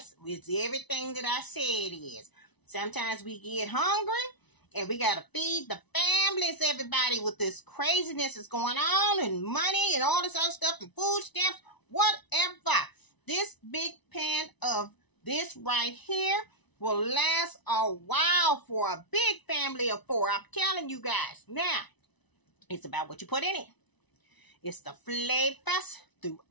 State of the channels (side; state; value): right; late; 1.0 ms